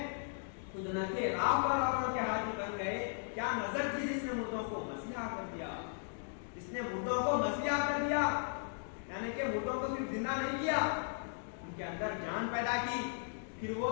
خود نہ تھے راہ پر اوروں کے حاجی بن گئے. کیا نظر تھی جس نے مردوں کو مسیحا کر دیا، جس نے مردوں کو مسیحا کر دیا، یعنی کہ مردوں کو صرف زندہ نہیں کیا، ان کے اندر جان پیدا کی. پھر وہ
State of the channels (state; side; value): silent; right; digital silence